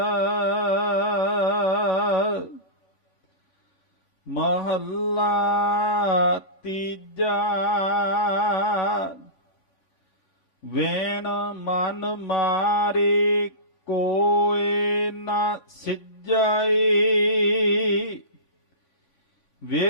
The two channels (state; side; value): late; right; 3.5 ms